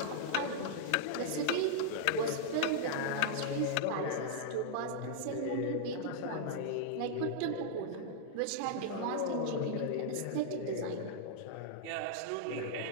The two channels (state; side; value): different; both; correlation -0.01